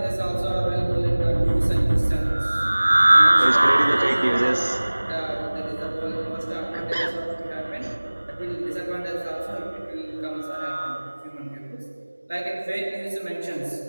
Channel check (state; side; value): inverted; both; correlation -1.00